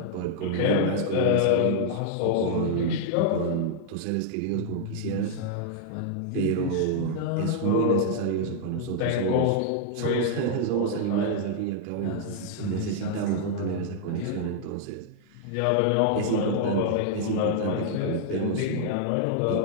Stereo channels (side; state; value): both; different; correlation -0.01